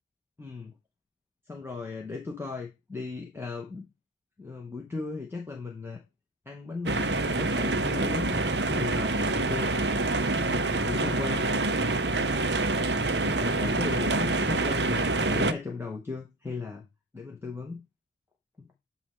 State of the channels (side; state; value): both; normal; correlation 0.24